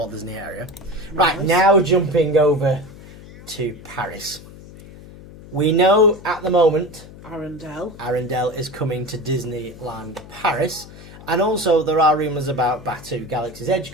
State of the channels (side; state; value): left; noise; hum, 18 dB below the sound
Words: Disney area. Right, Nice. now jumping over to Paris. We know at the moment Arendelle is coming to Disneyland Paris. And also there are rumours about Batuu Galaxy's Edge